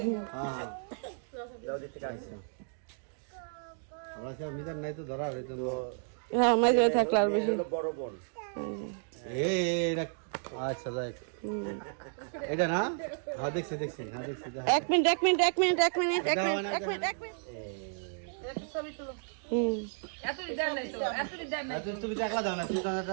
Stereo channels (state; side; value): silent; left; digital silence